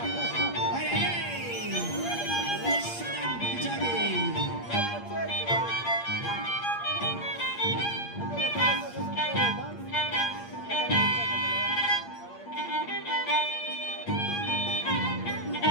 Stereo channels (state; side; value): late; right; 8.6 ms